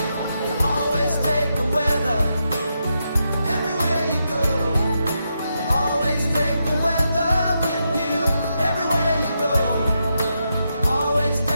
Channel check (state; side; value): inverted; both; correlation -0.84